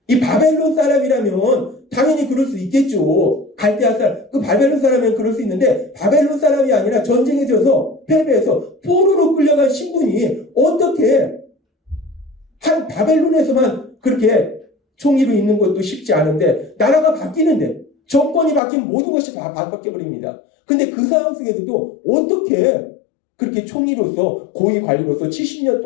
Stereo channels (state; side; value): drops out; right; at 18.6 s